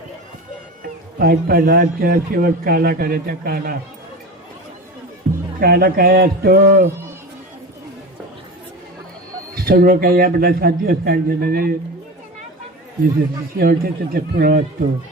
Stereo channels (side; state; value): both; normal; correlation 0.29